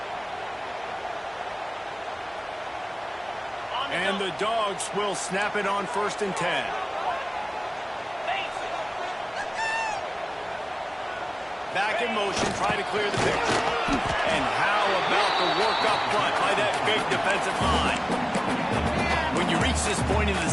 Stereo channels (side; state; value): both; identical; correlation 1.00